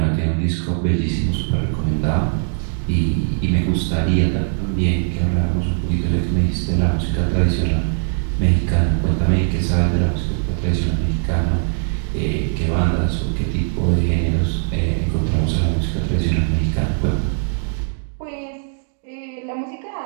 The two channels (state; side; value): silent; left; digital silence